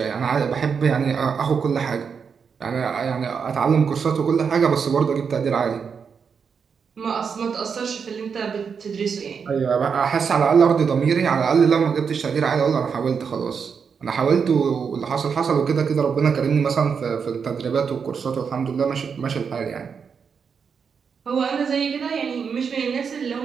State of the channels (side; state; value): left; quieter; 6.3 dB